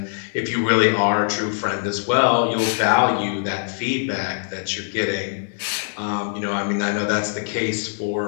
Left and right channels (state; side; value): silent; right; 64 dB below the other